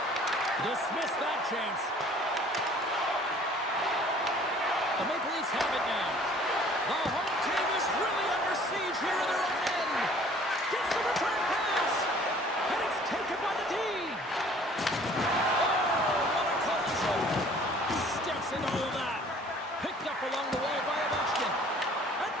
Dismiss that chance. The Maple Leafs have it now. The home team is really under siege here in their own end. Gets the return pass. And it's taken by the D. Oh, what a collision. Steps into all that. Picked up along the wall by Ovechkin. And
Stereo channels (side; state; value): both; normal; correlation 0.53